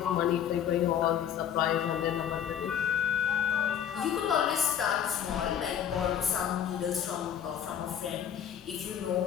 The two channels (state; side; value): quieter; right; 9.2 dB